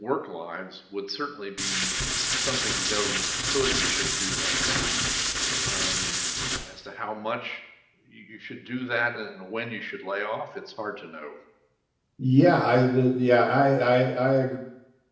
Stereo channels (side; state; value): both; identical; correlation 1.00